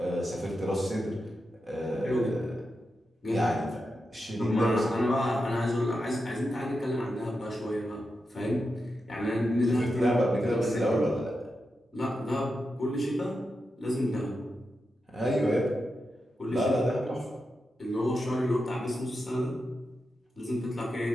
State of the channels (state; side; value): normal; both; correlation 0.88